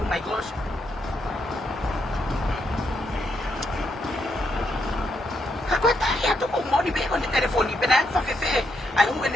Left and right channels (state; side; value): normal; both; correlation 0.78